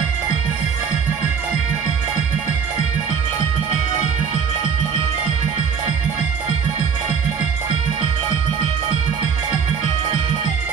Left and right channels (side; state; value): left; quieter; 6.5 dB